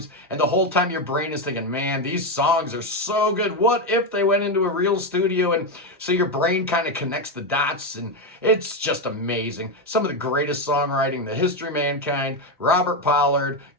And the whole time your brain is thinking, man, these songs are so good. What if they went into a real studio? And so your brain kind of connects the dots, and it's just amazing. Some of the greatest songwriting in the history of mankind. Robert Pollard,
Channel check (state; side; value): normal; both; correlation 0.09